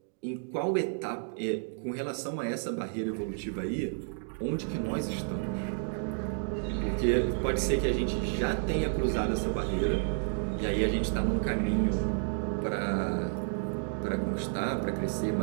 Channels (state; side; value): silent; left; digital silence